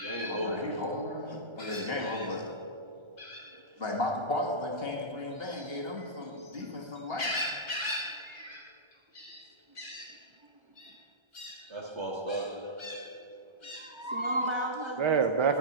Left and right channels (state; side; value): late; left; 1.3 ms